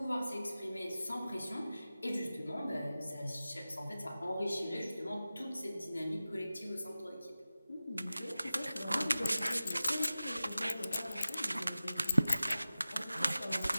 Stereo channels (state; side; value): inverted; both; correlation -0.95